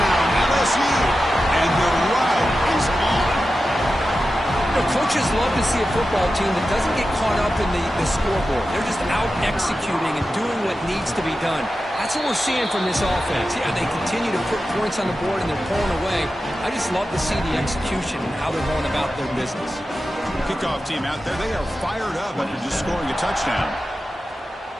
LSU. And the ride is on. The coaches love to see a football team that doesn't get caught up in the scoreboard. They're just out executing and doing what needs to be done. That's what we're seeing from this offense. Yeah, they continue to put points on the board and they're pulling away. I just love to see the execution and how they're going about their business. Kickoff team out there, they are fired up after just scoring a touchdown.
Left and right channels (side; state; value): both; normal; correlation 0.92